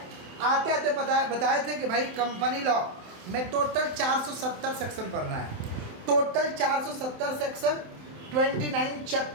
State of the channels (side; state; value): left; late; 27 ms